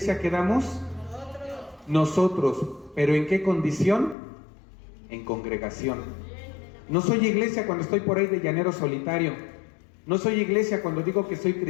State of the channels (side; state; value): right; drops out; at 4.2 s